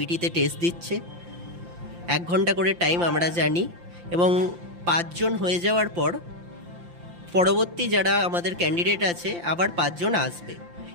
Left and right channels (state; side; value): late; left; 5.8 ms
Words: টেস্ট দিচ্ছে। 1 ঘন্টা করে টাইম আমরা জানি, এবং 5 জন হয়ে যাওয়ার পর পরবর্তী যারা আমাদের ক্যান্ডিডেট আছে আবার 5 জন আসবে,